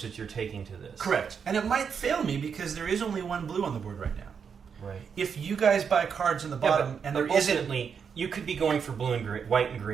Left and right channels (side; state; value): left; quieter; 6.6 dB